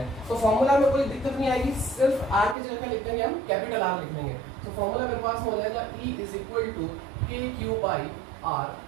तो फॉर्मूला में कोई दिक्कत नहीं आएगी, सिर्फ r की जगह क्या लिख देंगे हम, कैपिटल R लिख देंगे। तो फॉर्मूला मेरे पास हो जाएगा E =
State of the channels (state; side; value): drops out; left; at 2.6 s